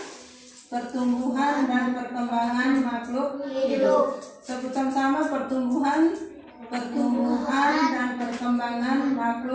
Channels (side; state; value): both; identical; correlation 1.00